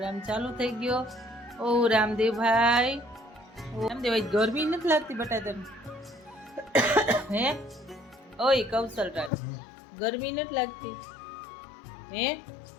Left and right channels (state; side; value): drops out; right; at 9.3 s